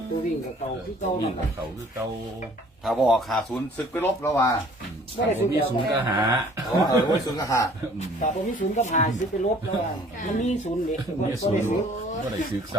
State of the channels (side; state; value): both; normal; correlation 0.54